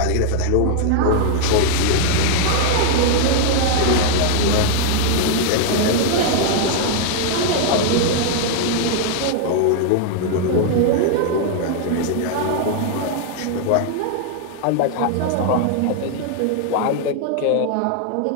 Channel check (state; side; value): different; both; correlation 0.00